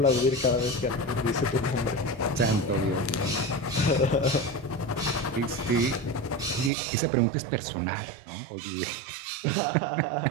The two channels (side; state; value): left; drops out; at 6.7 s